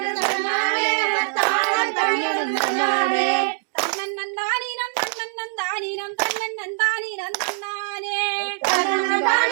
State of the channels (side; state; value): left; silent; 64 dB below the other